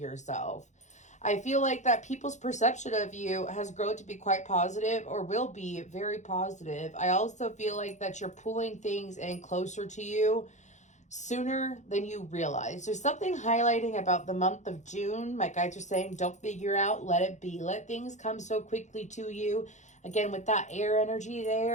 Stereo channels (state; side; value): late; right; 0.34 ms